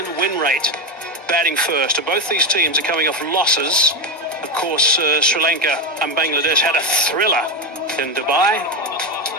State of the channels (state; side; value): normal; both; correlation 0.12